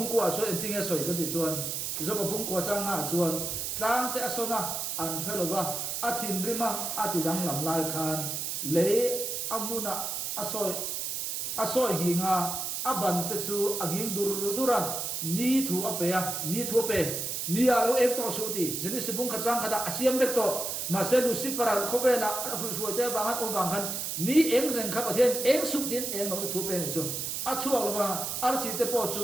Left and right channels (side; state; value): right; noise; hiss, 3 dB below the sound